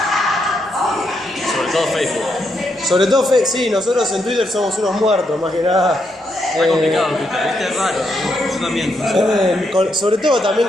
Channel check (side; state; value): both; normal; correlation 0.79